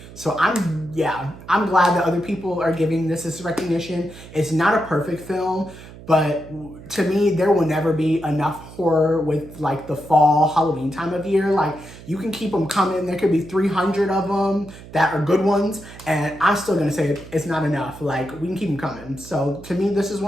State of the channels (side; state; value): right; noise; hum, 17 dB below the sound